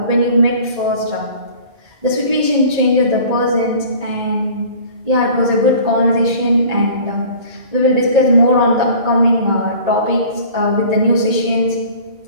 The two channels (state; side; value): late; left; 1.8 ms